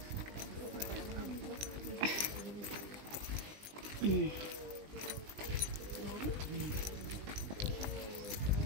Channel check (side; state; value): left; late; 20 ms